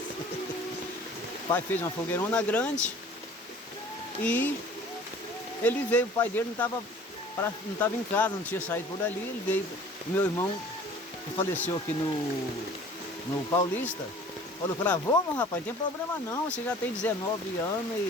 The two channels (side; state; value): both; normal; correlation 0.48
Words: O pai fez uma fogueirona grande e ele veio, o pai dele não estava em casa, não tinha saído por ali, ele veio. Meu irmão, que faleceu aqui no Paulista, falou para ele: vamos, rapaz, não tem problema não, você já tem 19 anos